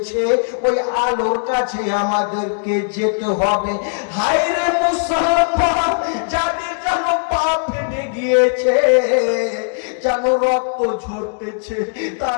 ওই আলোর কাছে আমাদেরকে যেতে হবে। হায় রে মুসলমান, যাদের যেন পা ফেটে গিয়েছে, যেন রক্ত ঝরতেছে,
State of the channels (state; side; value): silent; right; digital silence